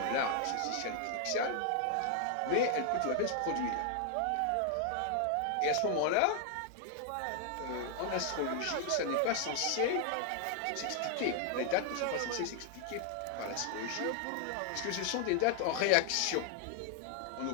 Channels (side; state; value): both; different; correlation 0.00